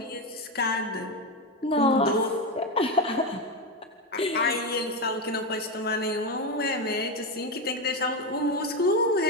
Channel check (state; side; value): normal; both; correlation 0.12